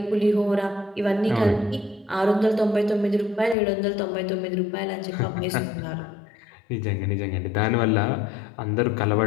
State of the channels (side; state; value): right; drops out; at 3.6 s